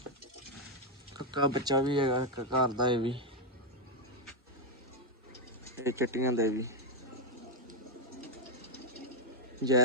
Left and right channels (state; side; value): normal; both; correlation 0.02